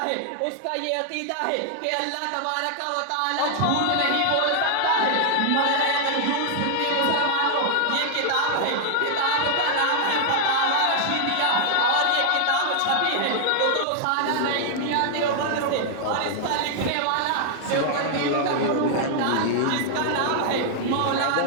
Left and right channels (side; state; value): both; different; correlation 0.00